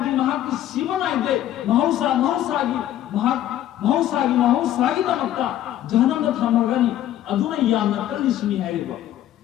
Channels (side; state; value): right; quieter; 12.3 dB